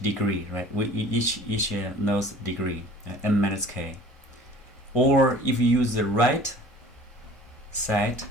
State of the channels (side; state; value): both; normal; correlation 0.47